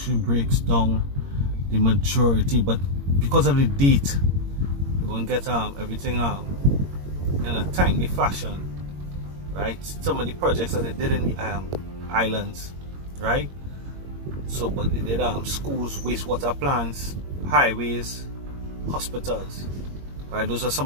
breaks down the majority, but because of the date, you won't get everything in a timely fashion. Right, some of the projects that they did in the islands, right? So, but they did schools, wastewater plants, highways, hospitals. Right, those are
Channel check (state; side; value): late; left; 21 ms